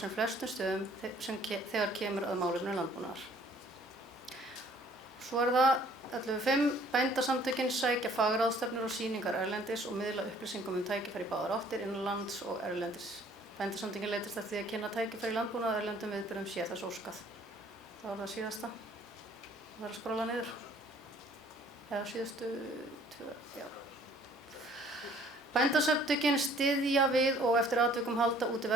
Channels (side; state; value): both; normal; correlation 0.57